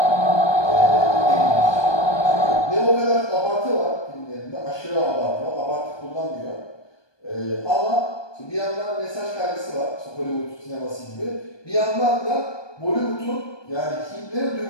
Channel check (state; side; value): late; right; 1.2 ms